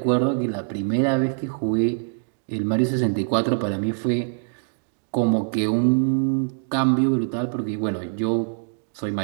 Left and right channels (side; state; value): left; silent; digital silence